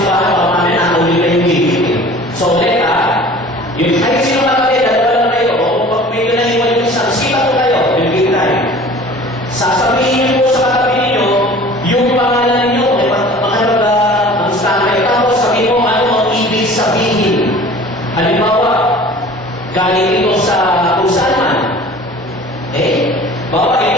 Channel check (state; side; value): normal; both; correlation 0.44